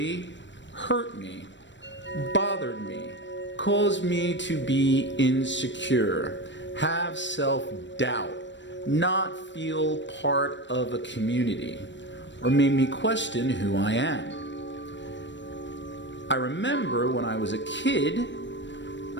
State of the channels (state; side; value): late; right; 0.53 ms